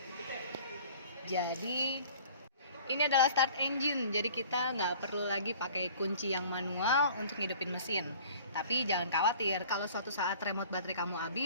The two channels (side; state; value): both; inverted; correlation -0.48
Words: Jadi ini adalah start engine. Jadi kita nggak perlu lagi pakai kunci yang manual untuk ngidupin mesin. Tapi jangan khawatir, kalau suatu saat remote baterai kamu